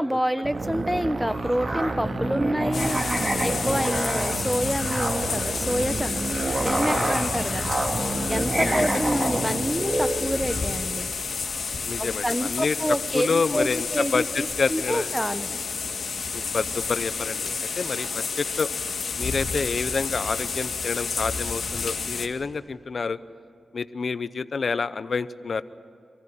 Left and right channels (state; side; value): normal; both; correlation 0.93